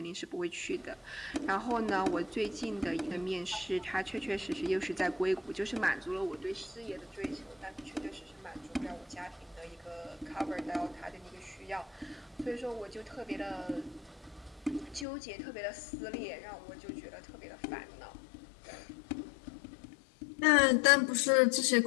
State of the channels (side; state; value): right; drops out; at 15.1 s